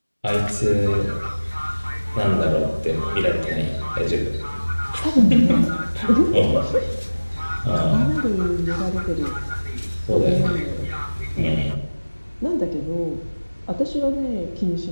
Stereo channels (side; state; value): both; inverted; correlation -1.00